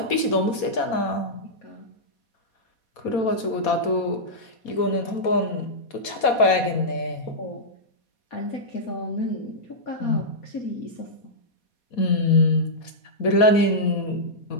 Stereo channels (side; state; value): right; late; 4.2 ms